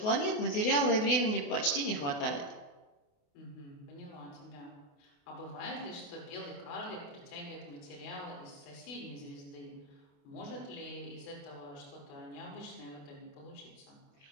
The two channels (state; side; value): late; right; 28 ms